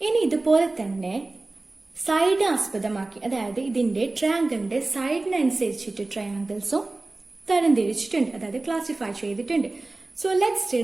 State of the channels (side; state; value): left; quieter; 3.1 dB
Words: ഇനി ഇതുപോലെ തന്നെ സൈഡ് ആസ്പദമാക്കി, അതായത് ഇതിന്റെ ട്രയാങ്കിളിന്റെ സൈഡിനനുസരിച്ചിട്ട് ട്രയാങ്കിൾസും തരംതിരിച്ചിട്ടുണ്ട്, അതായത് ക്ലാസിഫൈ ചെയ്തിട്ടുണ്ട്. So let's